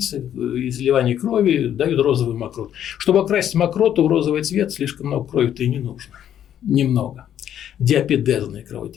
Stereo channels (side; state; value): right; quieter; 10.2 dB